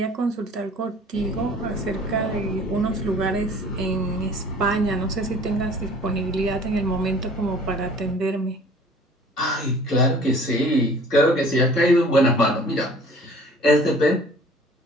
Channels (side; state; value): both; normal; correlation 0.49